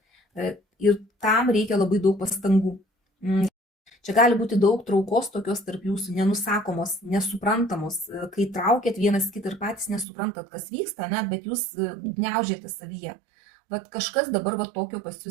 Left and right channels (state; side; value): drops out; left; at 10.1 s